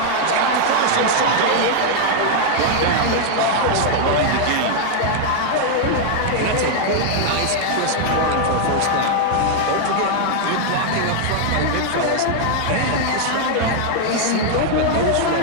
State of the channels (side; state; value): both; different; correlation 0.00